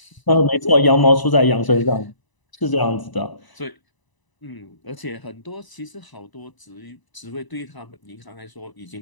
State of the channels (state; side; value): late; right; 1.0 ms